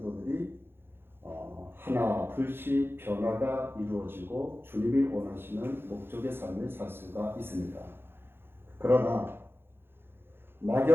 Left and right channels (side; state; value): left; late; 0.11 ms